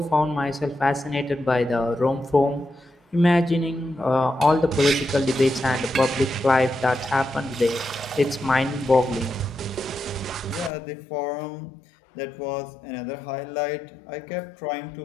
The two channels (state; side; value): drops out; right; at 10.7 s